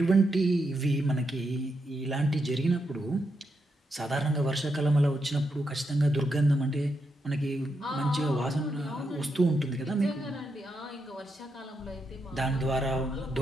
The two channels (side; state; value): both; normal; correlation 0.83